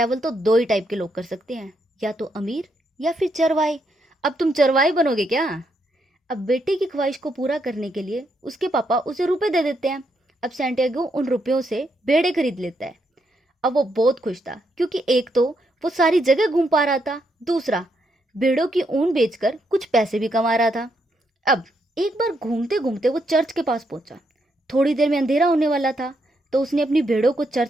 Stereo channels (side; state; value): both; normal; correlation 0.78